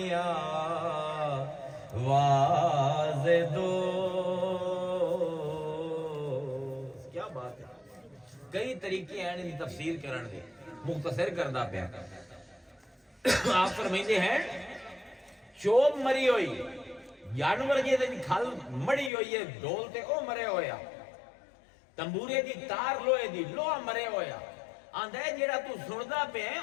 واز دو. کیا بات ہے. کئی طریقے ہیں ان تفسیر کرن دے. مختصر کردہ پیا آپ فرمائندے ہیں چوب مری ہوئی جانور جی کھل مڑی ہوئی ہے ڈول تے او مرے ہویا تمبورے دی تار لوہے دی لوہا مرے ہویا آندا ہے جیڑا تو سندا پیا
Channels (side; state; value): right; drops out; at 19.1 s